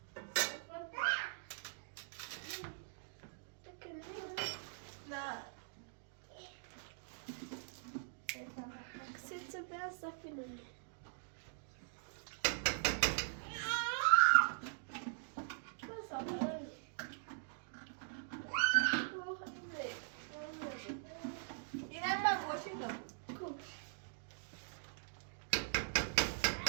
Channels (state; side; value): silent; left; digital silence